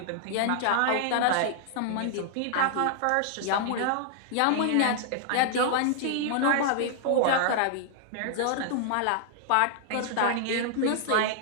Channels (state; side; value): different; both; correlation -0.01